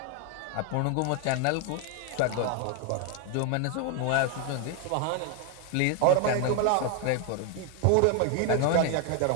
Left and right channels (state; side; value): different; both; correlation 0.01